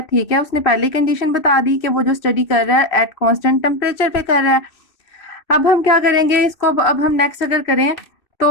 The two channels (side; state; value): right; late; 2.6 ms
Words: ठीक है, उसने पहली कंडीशन बता दी कि वो जो स्टडी कर रहा है एट कांस्टेंट टेम्परेचर पे कर रहा है। अब हम क्या करेंगे इसको? अब हम नेक्स्ट अगर करें